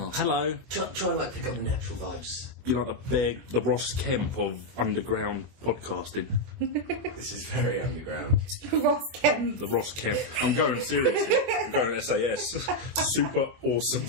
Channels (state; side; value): late; left; 22 ms